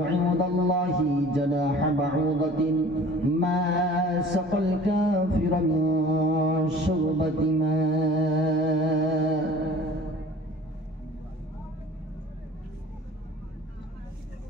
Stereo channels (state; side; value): normal; both; correlation 0.46